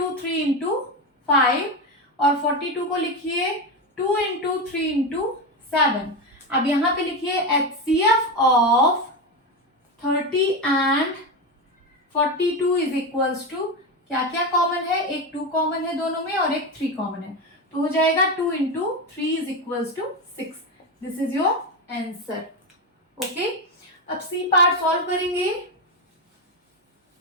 3 इंटू 5 और 42 को लिखिए 2 इंटू 3 इंटू 7। अब यहाँ पे लिखिए HCF of 30 and 42 is equals to, क्या क्या कॉमन है? एक 2 कॉमन है दोनों में और एक 3 कॉमन है। तो हो जाएगा 2 into 3 is equals to 6। This is your answer. Okay, अब सी पार्ट सॉल्व करेंगे।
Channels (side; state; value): both; normal; correlation 0.15